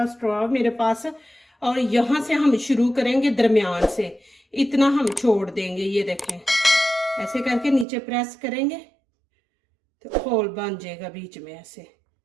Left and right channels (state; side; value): drops out; left; at 7.9 s